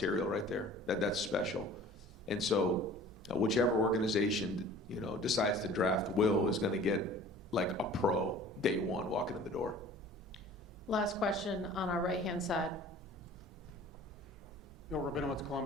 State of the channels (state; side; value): normal; both; correlation 0.46